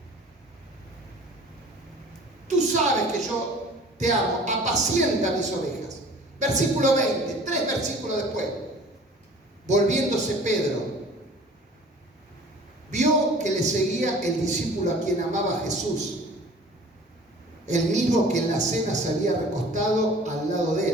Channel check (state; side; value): normal; both; correlation 0.47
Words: Tú sabes que yo te amo, apacienta mis ovejas. Versículo 20, 3 versículos después. Volviéndose Pedro, vio que le seguía el discípulo a quien amaba Jesús, el mismo que en la cena se había recostado al lado de